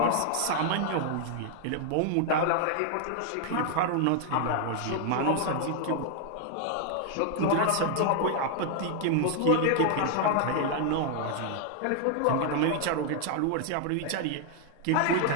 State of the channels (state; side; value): different; both; correlation 0.00